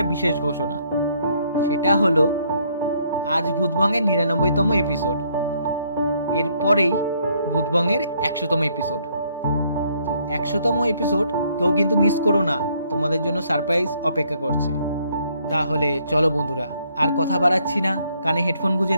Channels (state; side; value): inverted; both; correlation -0.68